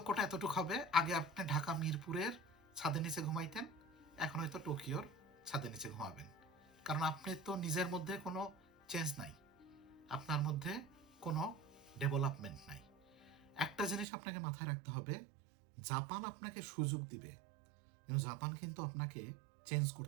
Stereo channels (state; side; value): drops out; left; at 14.1 s